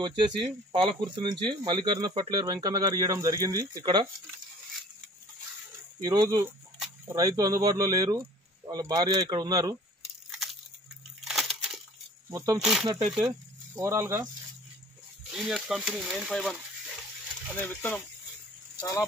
వచ్చేసి పాలకుర్తి నుంచి మల్లికార్జున ఫర్టిలైజర్ వెంకన్న గారు ఇవ్వడం జరిగింది. ఇక్కడ ఈరోజు రైతు అందుబాటులో లేరు, వాళ్ళ భార్య ఇక్కడ ఉన్నారు. మొత్తం చూసినట్టయితే ఓవరాల్గా జీనియస్ కంపెనీ 951 అనే విత్తనం చాలా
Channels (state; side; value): normal; both; correlation 0.49